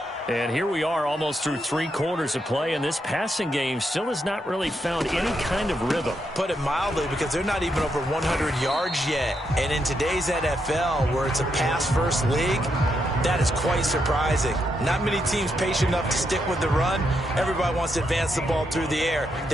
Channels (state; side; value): normal; both; correlation 0.80